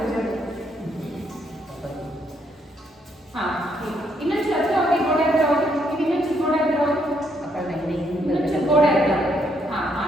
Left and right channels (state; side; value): normal; both; correlation 0.73